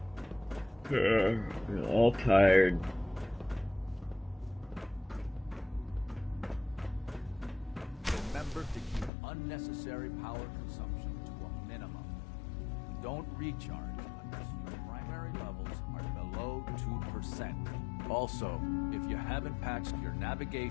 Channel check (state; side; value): drops out; right; at 9.1 s